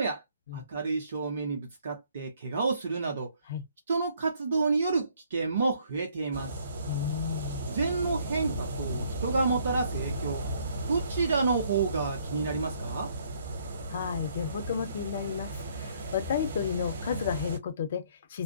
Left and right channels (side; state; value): both; inverted; correlation -0.65